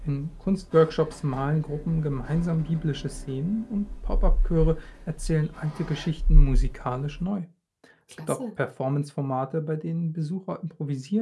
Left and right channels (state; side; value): identical; both; correlation 1.00